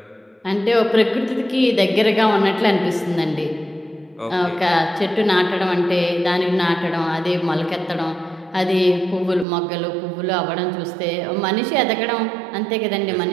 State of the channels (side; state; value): left; drops out; at 9.5 s